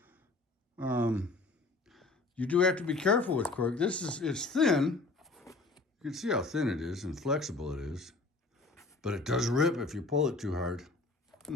You do have to be careful with cork. It's thin. You can see how thin it is and flexible it is. But it does rip if you pull it too hard.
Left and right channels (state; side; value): quieter; right; 3.4 dB